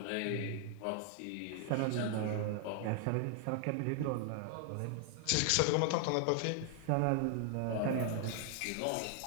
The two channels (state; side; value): different; both; correlation 0.00